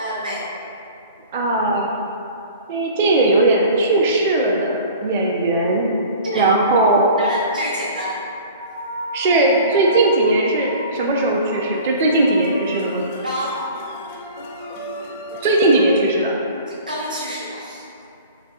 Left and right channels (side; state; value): both; inverted; correlation -0.42